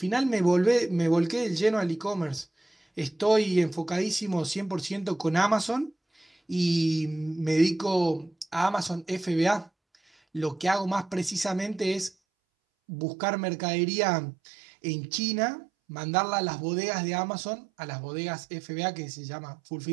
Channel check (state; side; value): drops out; left; at 12.1 s